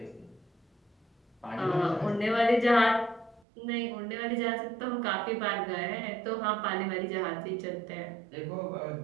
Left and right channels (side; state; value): left; drops out; at 3.4 s